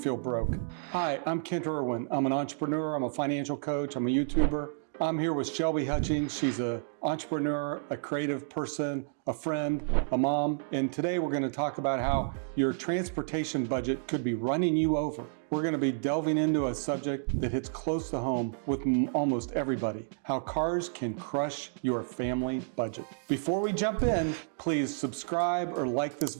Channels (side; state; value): left; silent; digital silence